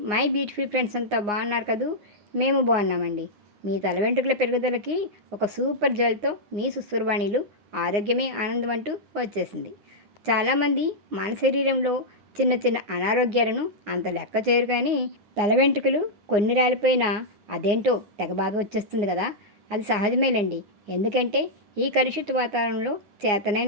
My beautiful friends అంతా బాగున్నారు కదూ? మేము బాగున్నామండి. మీ తల వెంట్రుకల పెరుగుదలకి ఒక సూపర్ జెల్తో మీ సుస్తుర్వాణిలు ఆరోగ్యమే ఆనందం అంటూ వచ్చేసింది. చాలామంది మన శరీరంలో చిన్న చిన్న అనారోగ్యాలను అంత లెక్క చేయరు, కానీ తల వెంట్రుకలు కొన్ని రాలిపోయినా అదేంటో తెగ బాగా వచ్చేస్తుంది కదా. అది సహజమేలండి. ఎందుకంటే ఈ కలుషిత వాతావరణంలో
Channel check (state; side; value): late; left; 9.7 ms